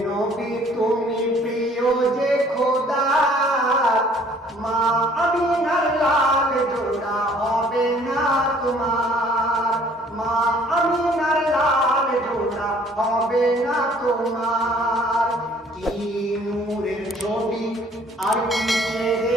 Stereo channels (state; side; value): normal; both; correlation 0.57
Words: নবী তুমি প্রিয় যে খোদা, মা আমিনার লাল জোড়া হবে না তোমার, মা আমিনার লাল জোড়া হবে না তোমার। কি নূরের ছবি আর কি